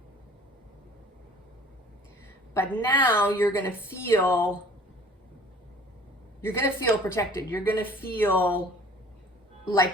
But now you're going to feel protected. You're going to feel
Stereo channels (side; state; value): both; normal; correlation 0.49